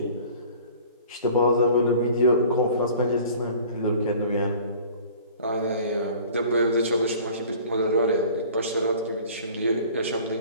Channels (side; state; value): both; inverted; correlation -0.48